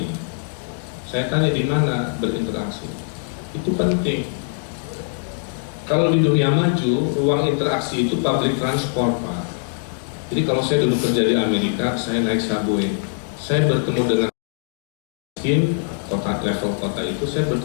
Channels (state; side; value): silent; right; digital silence